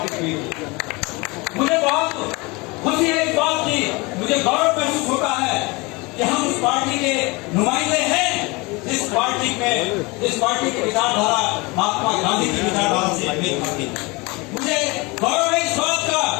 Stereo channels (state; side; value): quieter; right; 25.5 dB